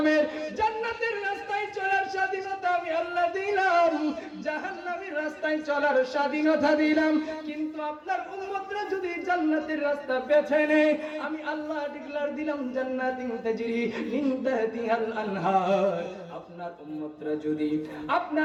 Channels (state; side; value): identical; both; correlation 1.00